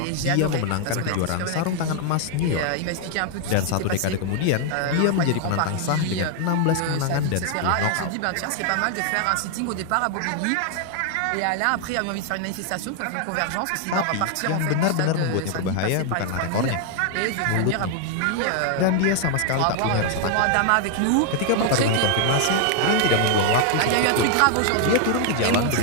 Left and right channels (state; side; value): different; both; correlation 0.00